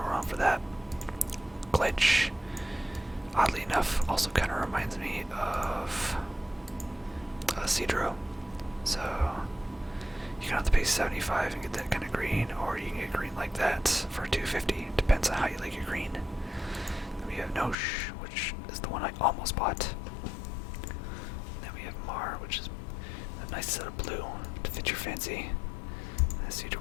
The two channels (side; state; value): right; drops out; at 17.8 s